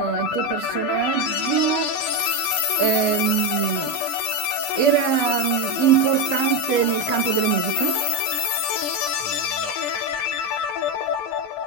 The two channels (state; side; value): late; right; 20 ms